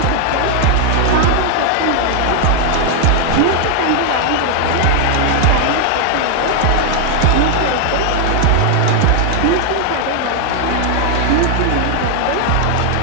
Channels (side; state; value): both; different; correlation 0.00